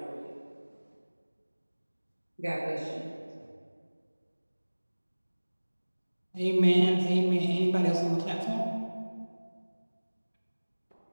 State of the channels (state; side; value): inverted; both; correlation -1.00